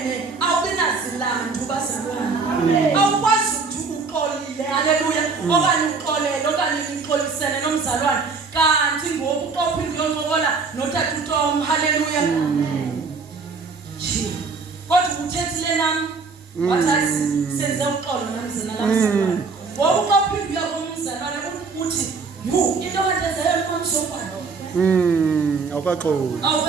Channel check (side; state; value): left; quieter; 4.6 dB